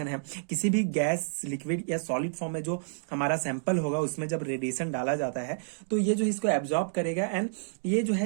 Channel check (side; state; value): left; silent; digital silence